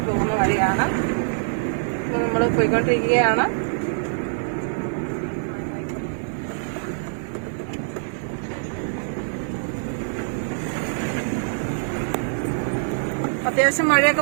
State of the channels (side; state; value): left; silent; digital silence